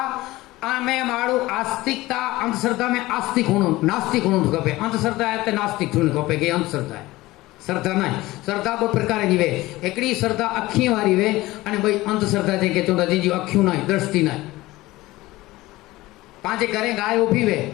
में माड़ू आस्तिकता, अंधश्रद्धा में आस्तिक होनो नास्तिक होनो खपे। अंधश्रद्धा है तो नास्तिक होनो खपे के अंधश्रद्धा है। श्रद्धा ना श्रद्धा दो प्रकार जी वे, एकड़ी श्रद्धा अखी वाली वे अने भाई अंधश्रद्धा जे के चोंदा जी अखियों ना दृष्टि ना। पांचे घरे गाय उभी वे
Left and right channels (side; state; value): right; quieter; 18.6 dB